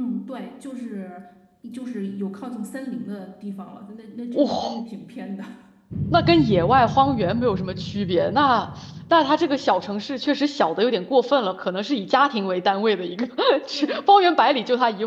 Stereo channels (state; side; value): identical; both; correlation 1.00